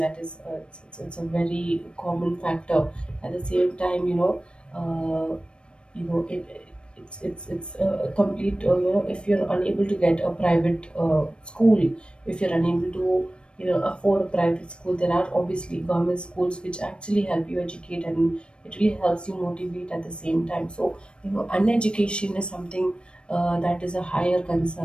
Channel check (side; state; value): right; late; 0.056 ms